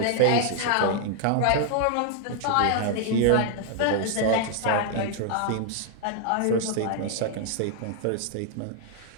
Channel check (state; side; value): different; both; correlation 0.00